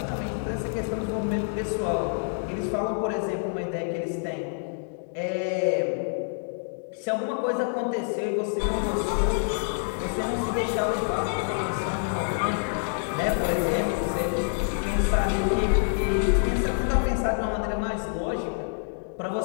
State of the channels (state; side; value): silent; right; digital silence